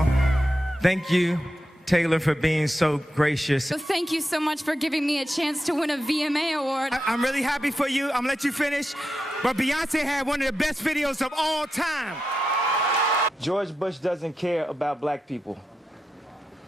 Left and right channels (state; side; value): normal; both; correlation 0.88